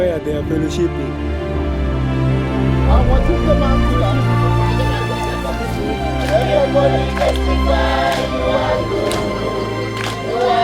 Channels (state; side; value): identical; both; correlation 1.00